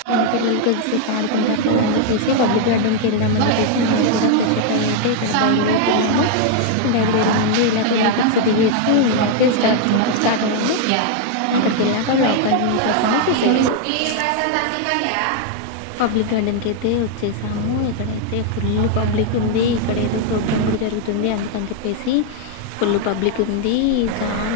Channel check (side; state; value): both; different; correlation 0.00